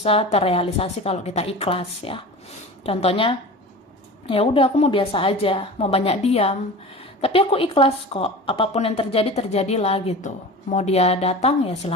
terrealisasi kalau kita ikhlas ya. Contohnya, ya udah aku mau biasa aja, mau banyak diam, tapi aku ikhlas kok. Apapun yang terjadi terjadilah gitu. Mau dia datang ya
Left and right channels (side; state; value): both; normal; correlation 0.34